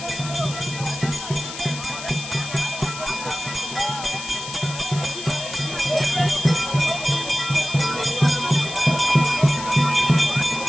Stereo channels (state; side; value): noise; left; hiss, 10 dB below the sound